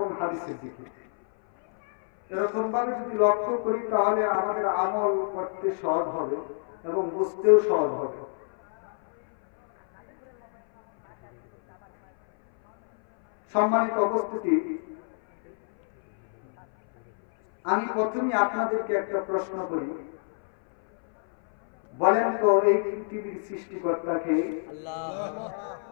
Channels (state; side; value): silent; right; 58 dB below the other